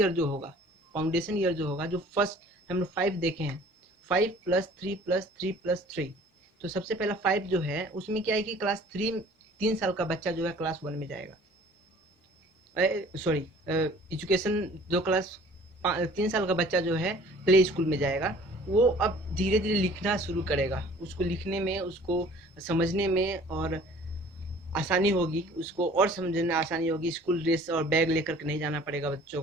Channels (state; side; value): normal; both; correlation 0.51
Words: जो होगा, जो फर्स्ट हम लोग 5 देखे हैं, 5+3+3+3। तो सबसे पहला 5 जो है उसमें क्या है कि क्लास 3, 3 साल का बच्चा जो है क्लास 1 में जाएगा। सॉरी, एजुकेशन जो क्लास 3 साल का बच्चा जो है प्ले स्कूल में जाएगा, वो अब धीरे धीरे लिखना शुरू करेगा। उसको लिखने में, उसको समझने में और आसानी होगी, उसको और समझने में आसानी होगी। स्कूल ड्रेस और बैग लेकर के नहीं जाना पड़ेगा बच्चों